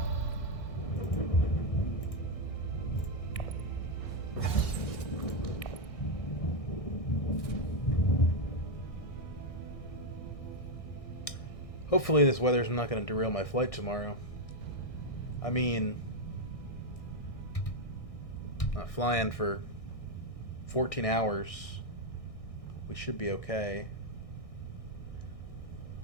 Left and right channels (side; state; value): right; late; 1.6 ms